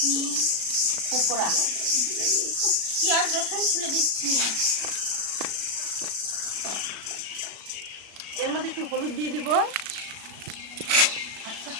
পকোড়া। পেঁয়াজ রসুন খুলে দিচ্ছি। এর মধ্যে একটু হলুদ দিয়ে দিব, আচ্ছা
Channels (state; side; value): late; left; 37 ms